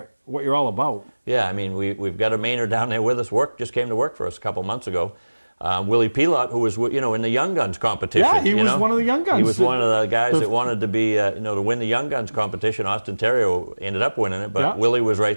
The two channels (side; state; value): both; inverted; correlation -1.00